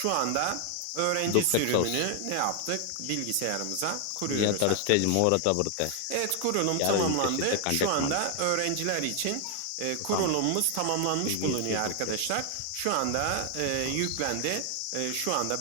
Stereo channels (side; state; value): both; different; correlation 0.00